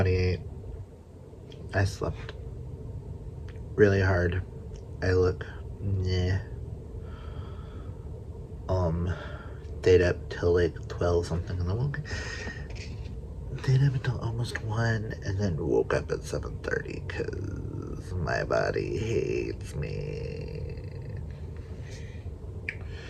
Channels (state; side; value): identical; both; correlation 1.00